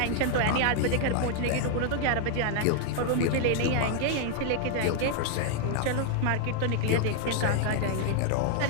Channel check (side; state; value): both; different; correlation 0.00